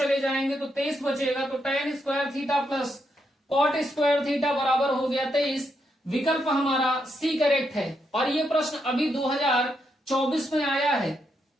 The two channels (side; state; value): both; normal; correlation 0.80